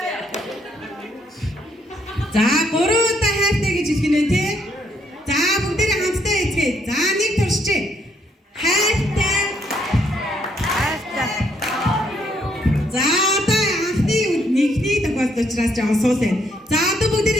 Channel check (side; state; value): both; normal; correlation 0.72